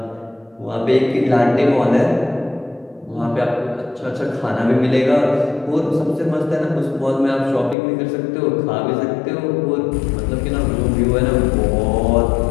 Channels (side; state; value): right; drops out; at 7.8 s